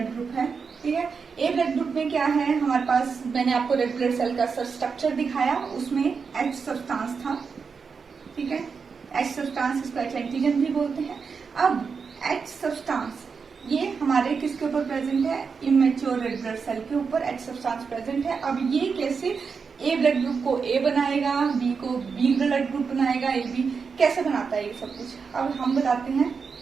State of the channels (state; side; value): quieter; left; 5.5 dB